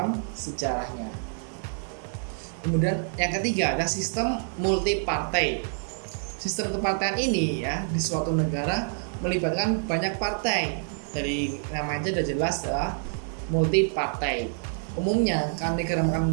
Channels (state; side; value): silent; left; digital silence